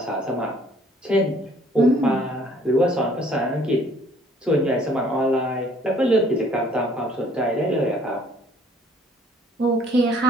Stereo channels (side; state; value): both; normal; correlation 0.59